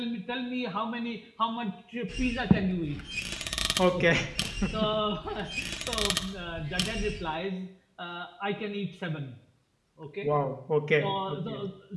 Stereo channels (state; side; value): identical; both; correlation 1.00